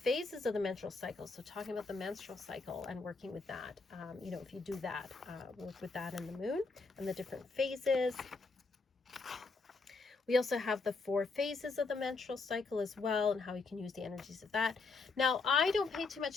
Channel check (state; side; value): quieter; right; 4.0 dB